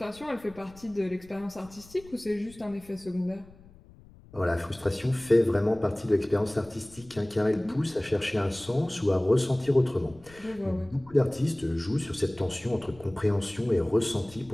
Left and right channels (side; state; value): left; noise; rumble, 23 dB below the sound